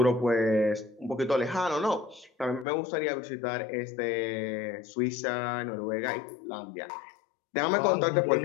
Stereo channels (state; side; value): drops out; right; at 2.7 s